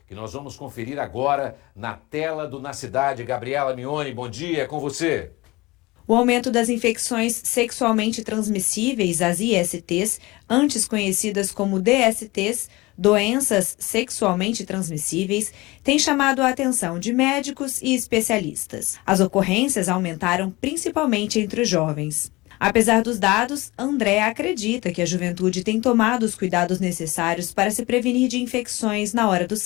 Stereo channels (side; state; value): right; quieter; 21.8 dB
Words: que nós vamos conferir agora na tela do Na Cidade. Gabriela Mignoni, bom dia, é com você. O aumento das infecções sexualmente transmissíveis, as ISTs, antes conhecidas como DSTs, doenças sexualmente transmissíveis, tem chamado a atenção de médicos e especialistas. As ocorrências aumentaram principalmente entre os jovens. Apesar dos dados, André acredita que a juventude tem tomado os cuidados necessários para se prevenir de infecções na hora do